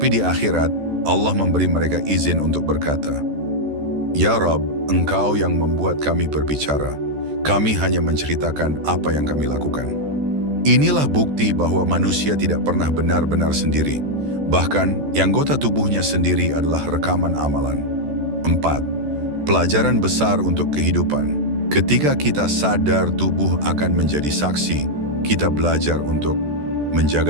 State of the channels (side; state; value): left; late; 14 ms